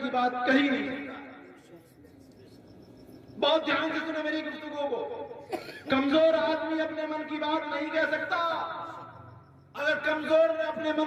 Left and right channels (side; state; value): both; identical; correlation 1.00